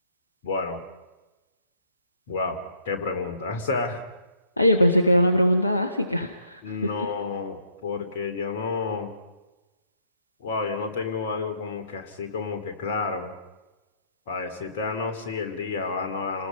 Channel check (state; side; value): inverted; both; correlation -0.67